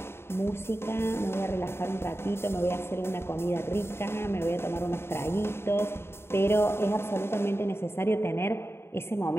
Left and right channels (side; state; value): right; late; 0.12 ms